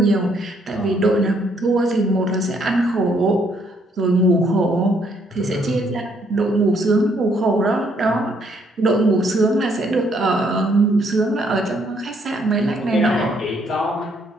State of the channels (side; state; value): both; normal; correlation 0.70